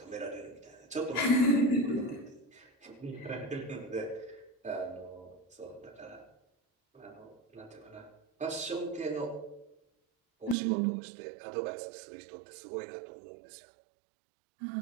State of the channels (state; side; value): drops out; left; at 10.6 s